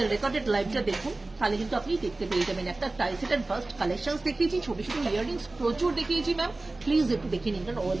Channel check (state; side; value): quieter; left; 3.1 dB